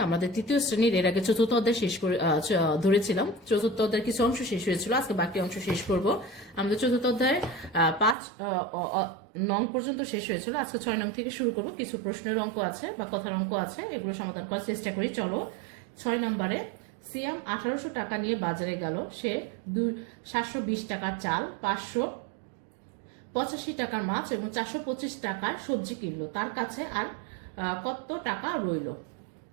আমাদের তৃতীয় শ্রেণীর এর আগে চতুর্থ অধ্যায় শেষ করে ধরেছিলাম। চতুর্থ অধ্যায়ের কিছু অংশ শেষ হয়েছিল, আজকে বাকি অংশ শেষ করব। আমাদের চতুর্থ অধ্যায় 5 নং পর্যন্ত শেষ হয়েছিল, আজকে 6 নং থেকে শুরু করব। কিছু প্রশ্নের অঙ্ক আছে বা কথার অঙ্ক আছে, এগুলো সমাধান করার চেষ্টা করি। চলো, 6 নম্বরে সিয়াম 1800 টাকা নিয়ে বাজারে গেল। সে 720 টাকার চাল, 585 টাকার মাছ এবং 425 টাকার সবজি কিনলো। তার কাছে আর কত টাকা রইল?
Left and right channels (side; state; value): left; drops out; at 8.2 s